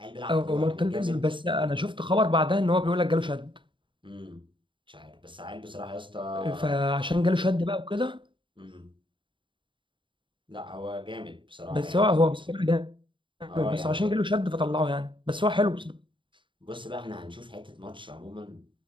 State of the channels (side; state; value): left; late; 0.24 ms